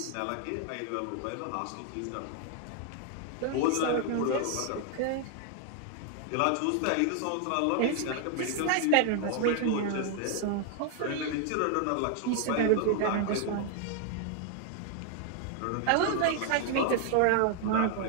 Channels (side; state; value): both; different; correlation 0.00